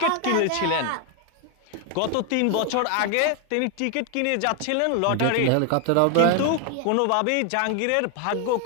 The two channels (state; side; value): different; both; correlation 0.00